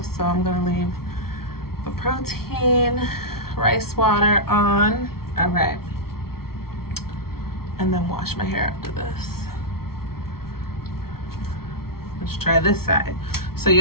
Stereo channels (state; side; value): late; right; 0.94 ms